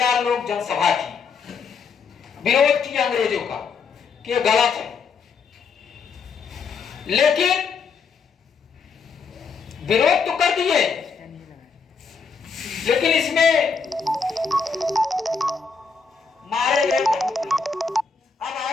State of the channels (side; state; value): right; quieter; 5.3 dB